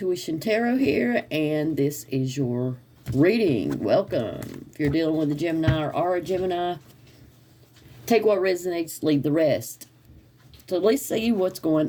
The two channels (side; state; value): both; identical; correlation 1.00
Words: Tarot here, and this is your reading. Welcome. If you're dealing with a Gemini or are a Gemini, take what resonates, leave the rest. So let's see what's